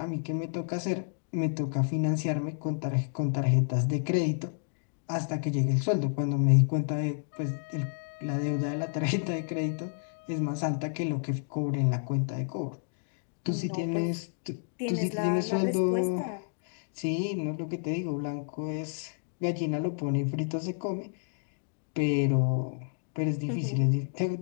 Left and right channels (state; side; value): silent; right; digital silence